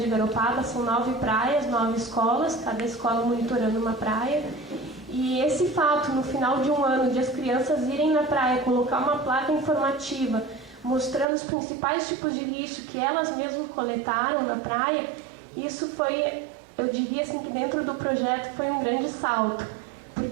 Garopaba. São 9 praias, 9 escolas, cada escola monitorando uma praia. E esse fato, no final de um ano, de as crianças irem na praia, colocar uma placa informativa, mostrando os principais tipos de lixo que elas mesmas coletaram na praia, isso foi, eu diria assim, que dentro do projeto foi um grande salto.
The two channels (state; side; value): drops out; left; at 11.2 s